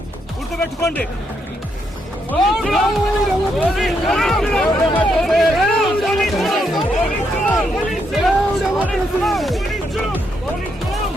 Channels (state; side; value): normal; both; correlation 0.78